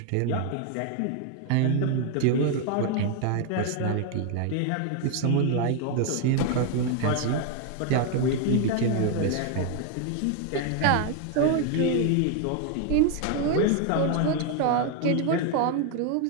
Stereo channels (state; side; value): different; both; correlation 0.00